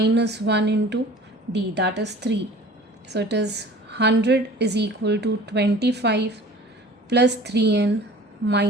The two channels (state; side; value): normal; both; correlation 0.45